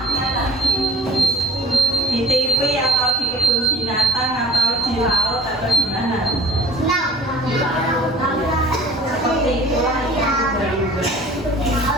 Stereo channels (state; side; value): normal; both; correlation 0.50